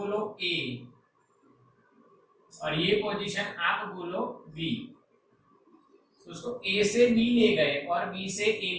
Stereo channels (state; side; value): identical; both; correlation 1.00